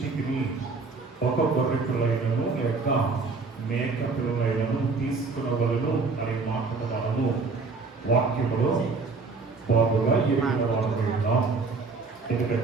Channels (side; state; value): left; quieter; 4.2 dB